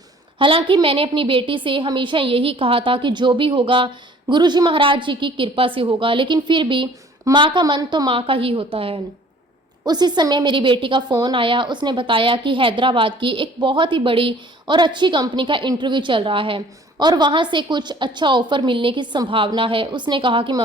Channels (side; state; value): both; normal; correlation 0.53